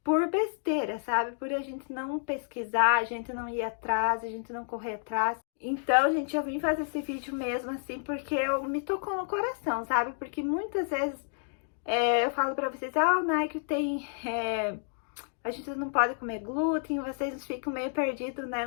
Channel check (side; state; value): right; silent; digital silence